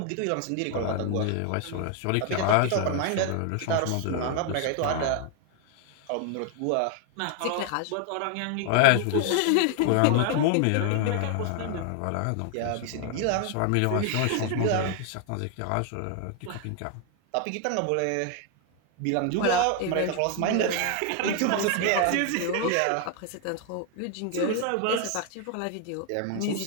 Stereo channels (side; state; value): both; different; correlation 0.00